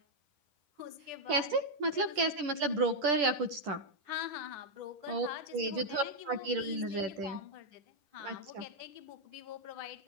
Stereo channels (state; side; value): late; left; 10 ms